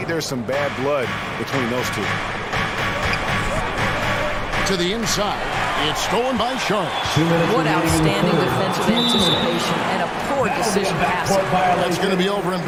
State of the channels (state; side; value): identical; both; correlation 1.00